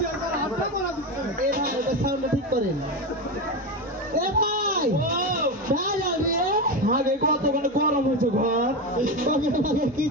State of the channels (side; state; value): both; normal; correlation 0.17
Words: একবার হাতে করা দিতে হবে। এ ভাই ওটা সাউন্ড ঠিক করেন এ ভাই ও ভেজাল রে আগে কতক্ষণ গরম হয়েছে ঘর ওকে